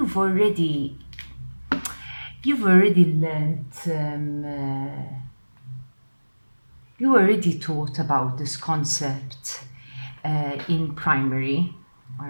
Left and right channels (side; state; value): both; inverted; correlation -1.00